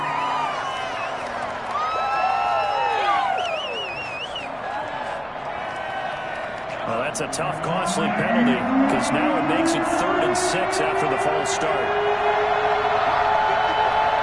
Well, that's a tough, costly penalty because now it makes it 3rd and 6 after the false start.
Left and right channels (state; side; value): identical; both; correlation 1.00